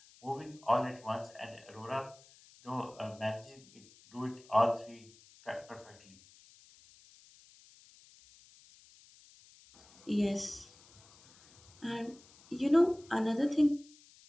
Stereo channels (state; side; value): noise; left; hiss, 25 dB below the sound